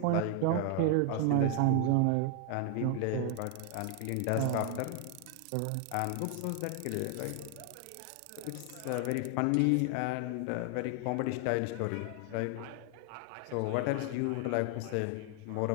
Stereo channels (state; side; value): different; both; correlation 0.00